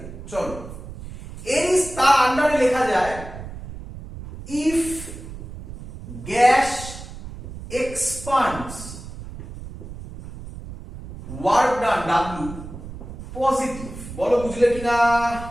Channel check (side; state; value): right; noise; rumble, 12 dB below the sound